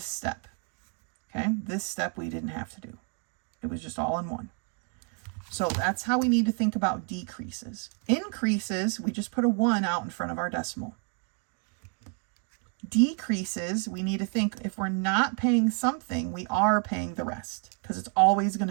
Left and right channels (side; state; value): left; quieter; 38.9 dB